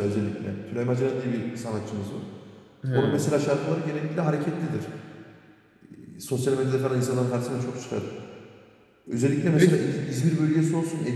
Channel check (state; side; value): identical; both; correlation 1.00